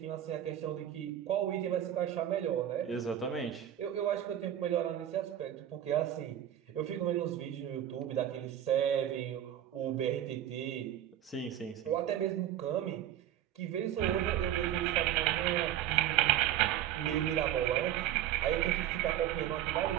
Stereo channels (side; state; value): left; quieter; 11.5 dB